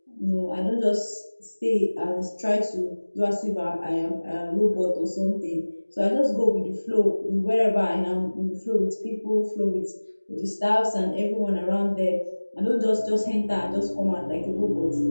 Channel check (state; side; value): inverted; both; correlation -1.00